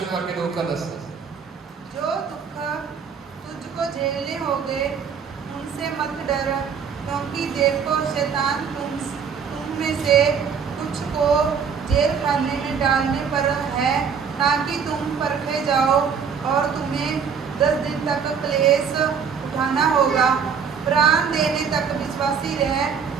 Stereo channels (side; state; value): left; quieter; 6.6 dB